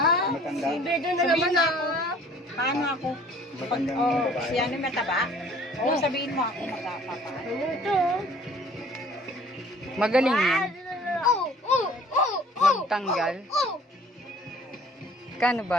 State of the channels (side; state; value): both; normal; correlation 0.53